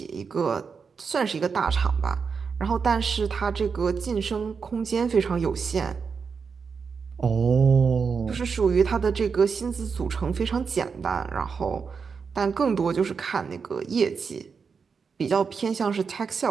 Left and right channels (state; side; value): quieter; left; 5.6 dB